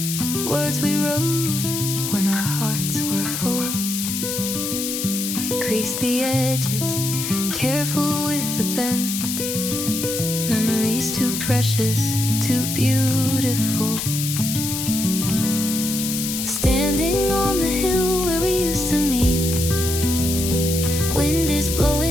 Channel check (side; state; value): left; noise; hiss, 3 dB below the sound